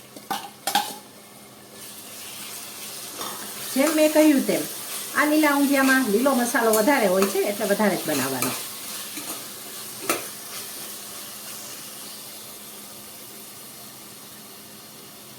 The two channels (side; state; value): both; identical; correlation 1.00